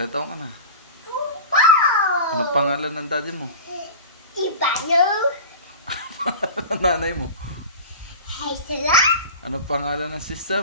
taon ka na? Anong pangalan ng daddy mo? Ivano. Anong nanay mo? Haisela. Anong pangalan ng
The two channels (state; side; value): inverted; both; correlation -0.32